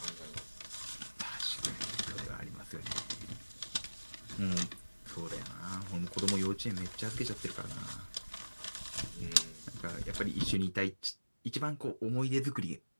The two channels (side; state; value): both; inverted; correlation -1.00